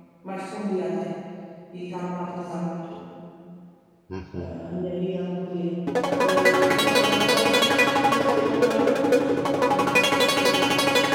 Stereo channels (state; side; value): identical; both; correlation 1.00